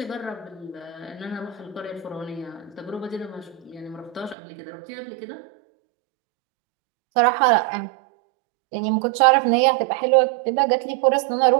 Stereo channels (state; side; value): drops out; left; at 4.4 s